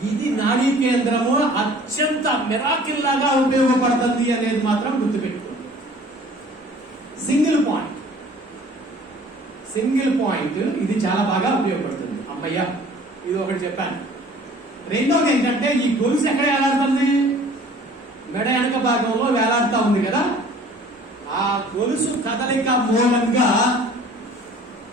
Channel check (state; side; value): normal; both; correlation 0.50